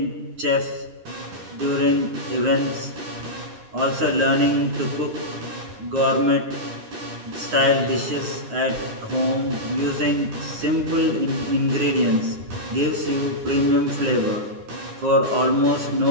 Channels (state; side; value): late; left; 10 ms